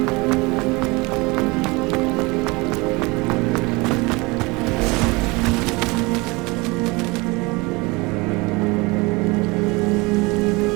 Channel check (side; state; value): left; quieter; 25.1 dB